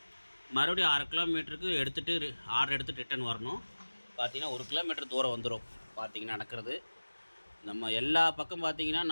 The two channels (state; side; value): inverted; both; correlation -1.00